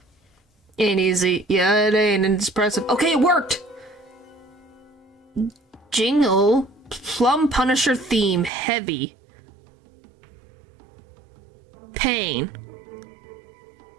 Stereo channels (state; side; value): drops out; left; at 8.5 s